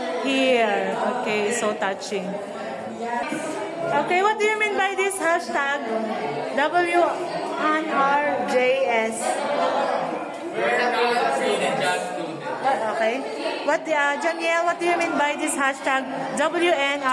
here. Okay, so touching. Okay, what do you mean by this hashtag? WNRJS. Okay. Janiel, what do you mean by this hashtag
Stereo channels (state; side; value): identical; both; correlation 1.00